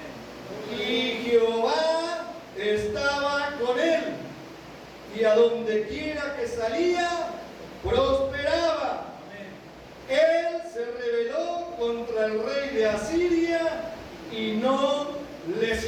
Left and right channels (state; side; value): identical; both; correlation 1.00